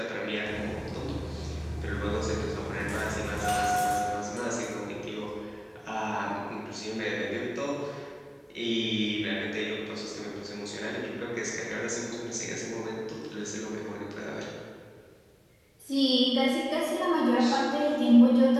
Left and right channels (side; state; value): both; identical; correlation 1.00